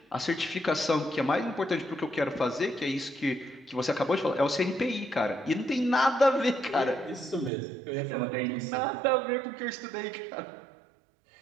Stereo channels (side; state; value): left; drops out; at 7.5 s